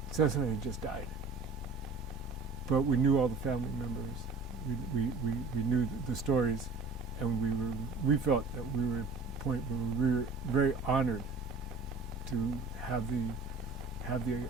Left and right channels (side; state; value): left; quieter; 3.9 dB